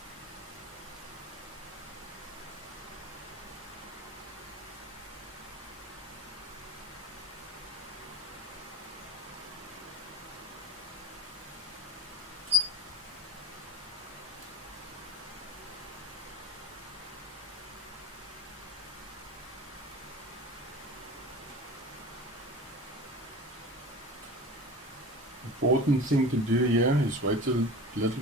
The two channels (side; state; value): both; normal; correlation 0.38